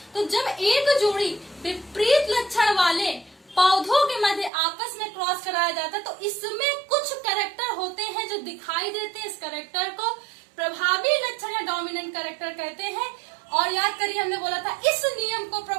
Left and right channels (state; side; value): drops out; left; at 4.5 s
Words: तो जब एक जोड़ी विपरीत लक्षण वाले पौधों के मध्य आपस में क्रॉस कराया जाता है, तो इसमें कुछ कैरेक्टर होते हैं जो दिखाई देते हैं, इस कैरेक्टर को प्रभावी लक्षण या डोमिनेंट कैरेक्टर कहते हैं। और याद करिए, हमने बोला था इस नियम को